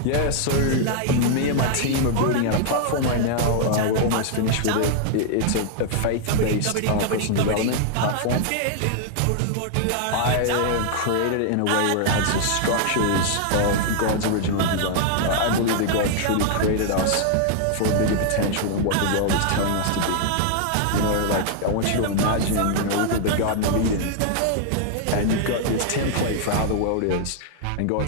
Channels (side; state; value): both; different; correlation -0.01